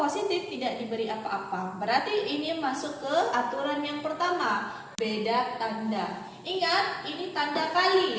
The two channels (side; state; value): both; identical; correlation 1.00